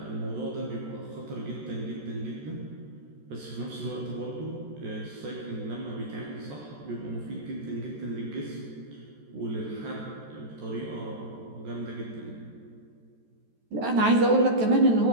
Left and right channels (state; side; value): late; left; 14 ms